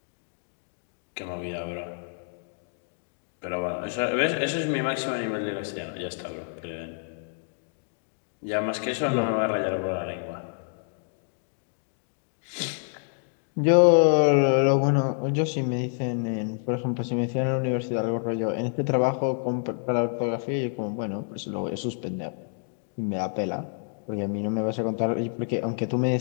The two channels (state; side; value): silent; right; digital silence